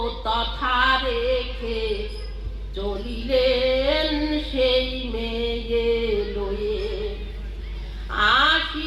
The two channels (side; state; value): both; identical; correlation 1.00